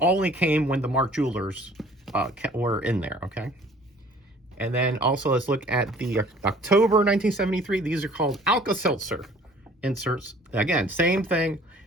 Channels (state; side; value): normal; both; correlation 0.53